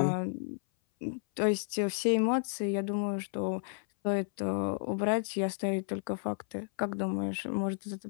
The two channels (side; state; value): right; silent; 56 dB below the other